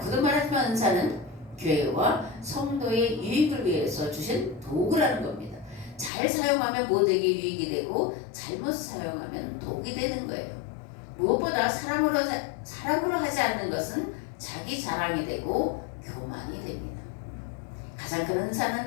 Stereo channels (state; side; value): drops out; right; at 6.1 s